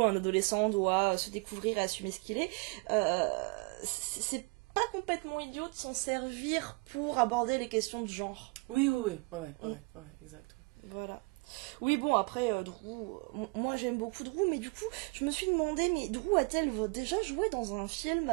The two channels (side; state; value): left; quieter; 28.9 dB